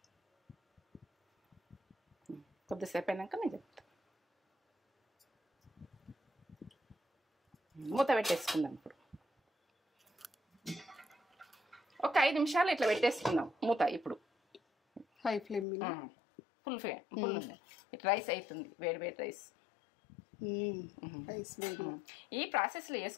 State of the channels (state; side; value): drops out; right; at 15.7 s